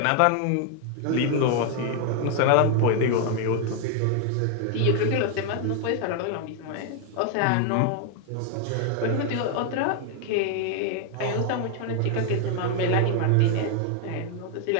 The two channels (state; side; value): different; both; correlation 0.00